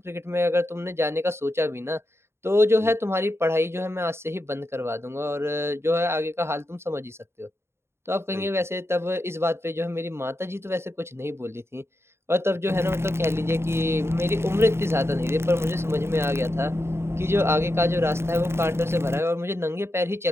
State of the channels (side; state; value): left; late; 0.12 ms